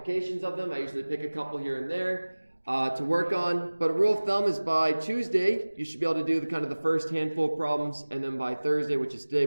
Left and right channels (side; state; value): both; inverted; correlation -1.00